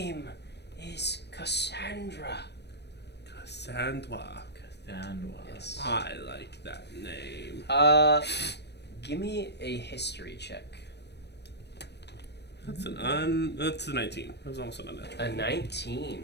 is Cassandra. Cassandra. Yes. I like that name. Give me a history check. That's a 19. That was almost an unnatural. A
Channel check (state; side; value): late; right; 0.49 ms